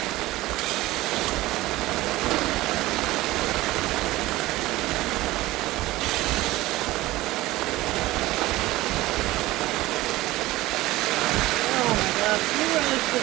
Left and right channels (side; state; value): left; quieter; 18.0 dB